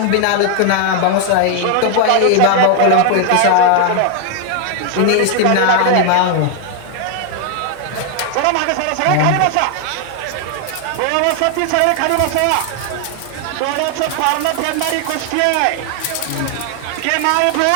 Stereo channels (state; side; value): different; both; correlation 0.00